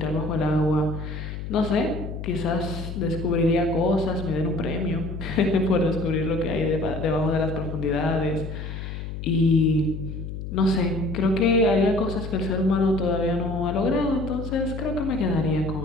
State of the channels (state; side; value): noise; left; hum, 7 dB below the sound